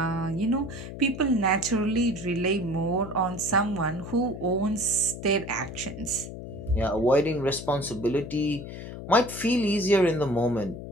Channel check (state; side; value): noise; left; hum, 10 dB below the sound